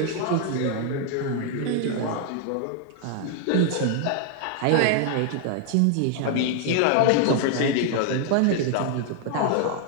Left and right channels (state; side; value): different; both; correlation 0.00